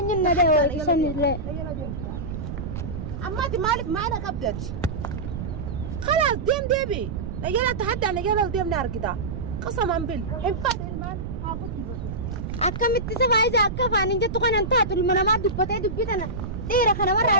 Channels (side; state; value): right; noise; rumble, 6 dB below the sound